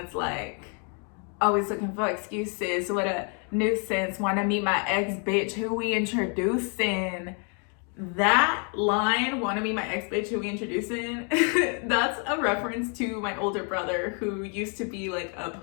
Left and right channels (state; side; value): quieter; right; 39.5 dB